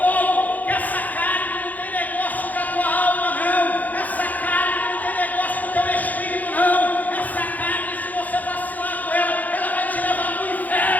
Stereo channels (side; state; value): right; late; 0.080 ms